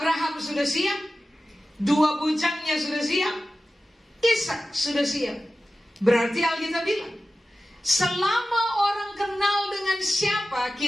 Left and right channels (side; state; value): both; normal; correlation 0.94